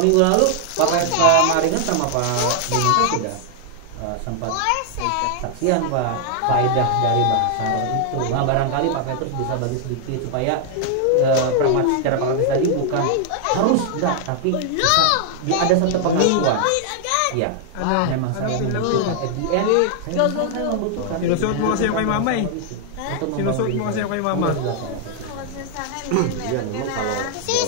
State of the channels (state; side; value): different; both; correlation 0.00